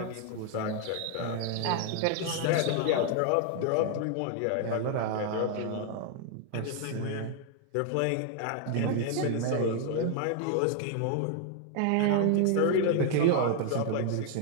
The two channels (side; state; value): both; different; correlation 0.00